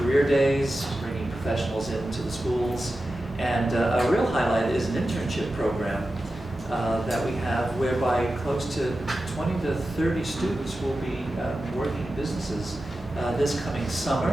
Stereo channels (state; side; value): normal; both; correlation 0.93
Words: days, bringing professionals into the schools, and a real highlight is an internship program that we have whereby close to 20 to 30 students will be working in businesses this coming